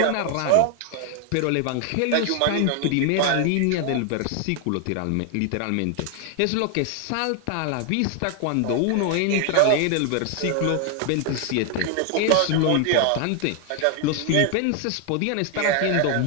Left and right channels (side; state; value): both; different; correlation 0.00